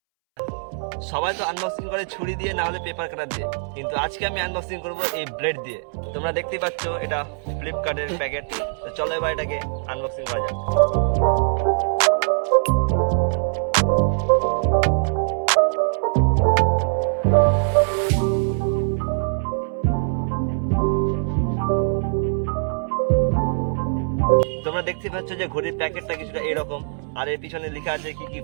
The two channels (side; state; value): left; silent; 64 dB below the other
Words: সবাই তো আনবক্সিং করে ছুরি দিয়ে, না হলে পেপার কাটার দিয়ে, কিন্তু আজকে আমি আনবক্সিং করব এই ব্লেড দিয়ে। তোমরা দেখতেই পাচ্ছ এটা ফ্লিপকার্টের প্যাকেট। তো চলো এবার এটাকে আনবক্সিং করা যাক। তোমরা দেখতে পাচ্ছ যে ঘড়ির প্যাকেটটা কিছুটা এরকম, আর এর পিছনে লেখা আছে কি কি